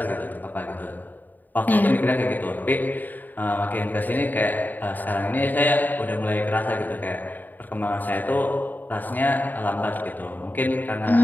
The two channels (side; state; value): right; late; 0.087 ms